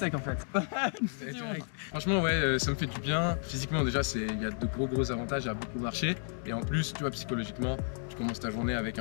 en fait. Franchement, ouais, ça me fait du bien. Physiquement, déjà, il y a de gros avantages à beaucoup marcher. Et en plus, tu vois, psychologiquement, tu commences ta journée avec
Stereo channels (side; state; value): right; silent; 56 dB below the other